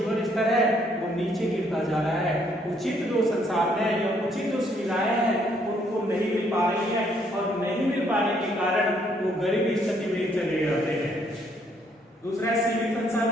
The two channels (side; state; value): both; normal; correlation 0.68